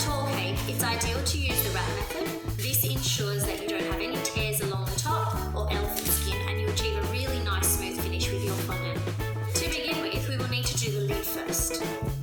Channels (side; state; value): both; identical; correlation 1.00